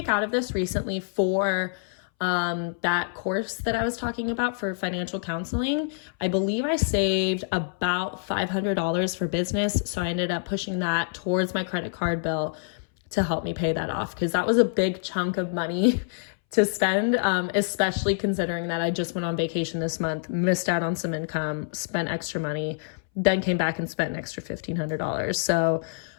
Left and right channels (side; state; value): right; silent; 61 dB below the other